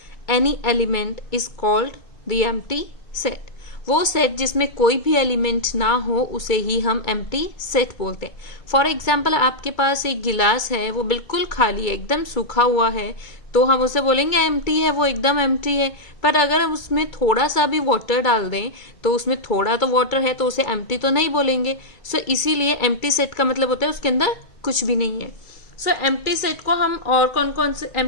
any element is called the empty set. वो set जिसमें कोई भी element ना हो उसे ही हम एम्प्टी सेट बोलते हैं. फॉर एग्जाम्पल आपके पास एक गिलास है, वो बिल्कुल खाली है, एकदम सूखा हुआ है, तो हम उसे बोलेंगे एम्प्टी है, वो एकदम एम्प्टी है. पर अगर हम उसमें थोड़ा सा भी वाटर डाल दें तो उसमें थोड़ा तो वाटर है तो उसे एम्प्टी तो नहीं बोलेंगे. सो इसीलिए एम्प्टी सेट का मतलब होता है उसके अंदर कुछ भी नहीं है. सो एम्प्टी सेट को हम और कौन कौन से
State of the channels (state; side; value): late; right; 2.2 ms